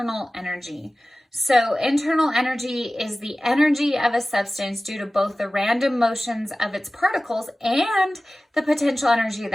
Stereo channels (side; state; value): both; normal; correlation 0.97